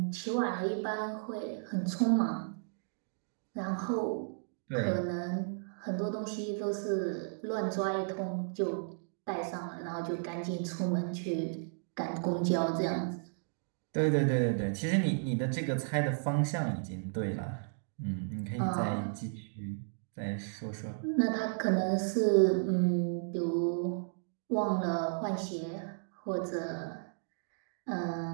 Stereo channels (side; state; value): left; silent; digital silence